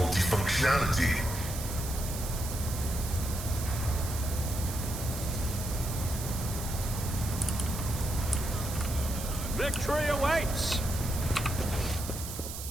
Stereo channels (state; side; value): noise; right; hiss, 8 dB below the sound